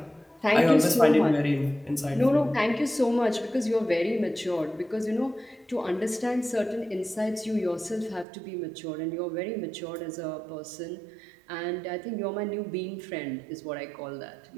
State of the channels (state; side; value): drops out; left; at 8.2 s